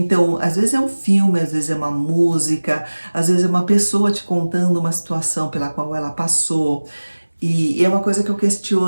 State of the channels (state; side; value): inverted; both; correlation -1.00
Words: às vezes é um filme, às vezes é uma música, às vezes é uma pessoa te contando uma situação pela qual ela passou. E é uma coisa que eu